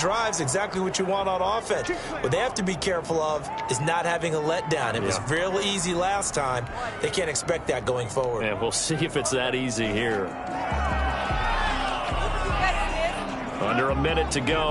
exactly what you want on offense. What they have to be careful of is not having a letdown. It was real easy last time. They can't expect that going forward. And we'll see if it's that easy here. Under a minute to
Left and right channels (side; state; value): both; identical; correlation 1.00